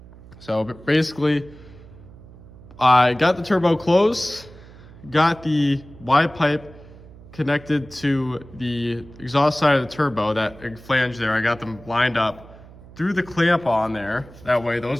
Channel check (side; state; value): right; noise; hum, 20 dB below the sound